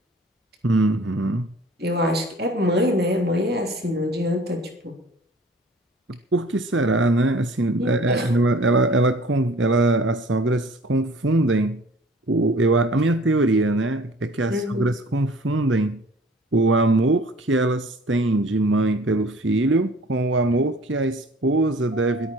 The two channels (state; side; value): normal; both; correlation 0.49